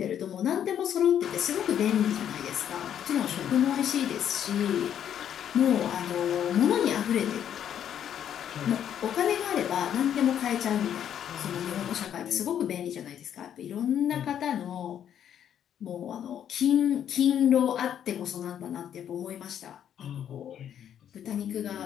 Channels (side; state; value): right; quieter; 9.6 dB